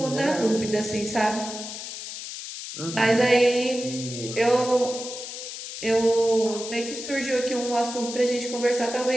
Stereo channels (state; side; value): noise; left; hiss, 9 dB below the sound